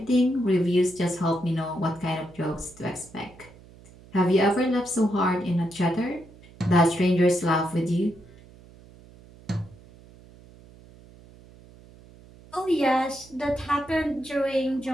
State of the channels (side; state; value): right; noise; hum, 23 dB below the sound